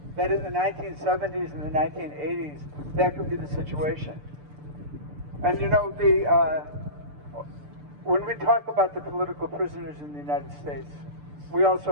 That in the 1970s and the 1980s, that could be the situation. And you know, when we talk about the political prisoners in the United States, we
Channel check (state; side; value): late; left; 6.8 ms